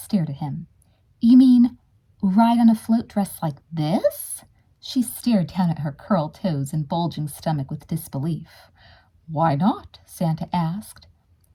at him. You mean ride on a float dressed like this? She stared down at her curled toes and bulging stomach with disbelief. Why not? Santa asked.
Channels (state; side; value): identical; both; correlation 1.00